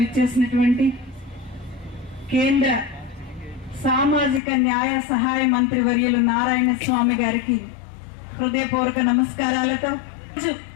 విచ్చేసినటువంటి కేంద్ర సామాజిక న్యాయ సహాయ మంత్రి వర్యులు నారాయణ స్వామి గారికి హృదయపూర్వక నమస్కారాలతో,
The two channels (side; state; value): right; drops out; at 4.4 s